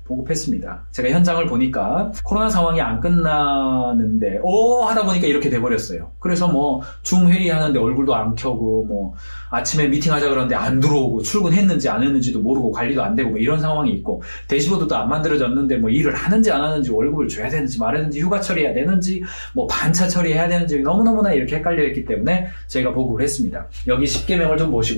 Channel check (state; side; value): inverted; both; correlation -1.00